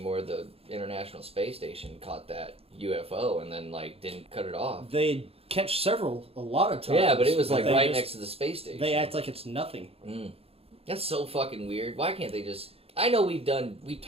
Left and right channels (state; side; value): late; left; 0.28 ms